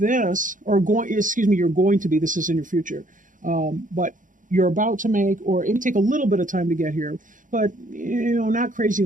going to be, this is in your future, but you're about to make, or it may take a little bit of time to get here, but, not crazy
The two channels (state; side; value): late; left; 0.38 ms